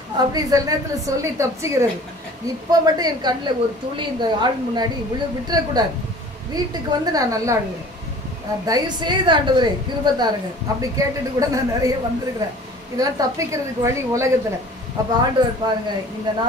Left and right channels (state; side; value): normal; both; correlation 0.46